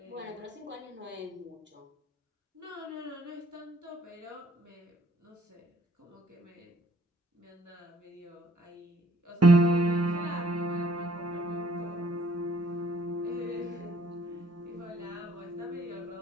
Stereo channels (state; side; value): normal; both; correlation 0.63